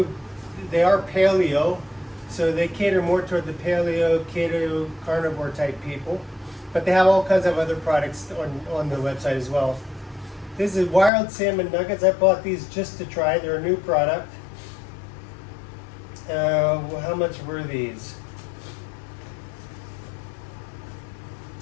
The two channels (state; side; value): drops out; right; at 11.1 s